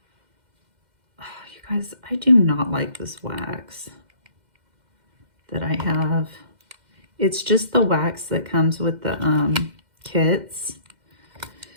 Oh, you guys, I do not like this wax that I have. It's just the wax that comes with the kits.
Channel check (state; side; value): late; left; 2.1 ms